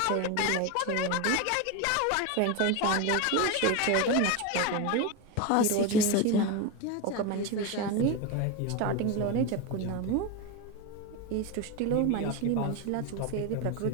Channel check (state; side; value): different; both; correlation 0.03